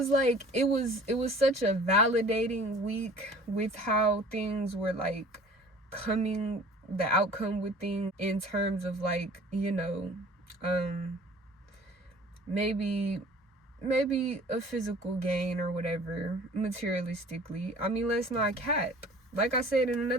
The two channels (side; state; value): both; normal; correlation 0.47